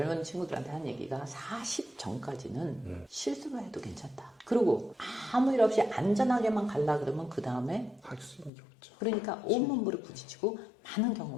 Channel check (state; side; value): drops out; right; at 8.5 s